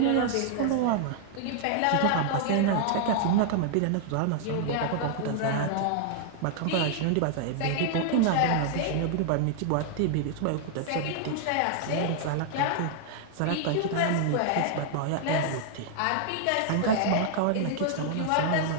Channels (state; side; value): different; both; correlation -0.01